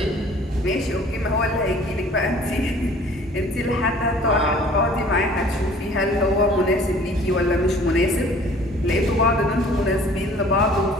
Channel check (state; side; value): normal; both; correlation 0.51